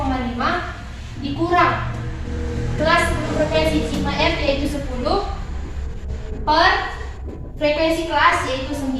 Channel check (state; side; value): identical; both; correlation 1.00